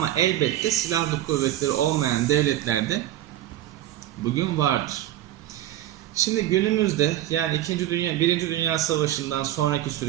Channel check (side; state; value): left; quieter; 13.2 dB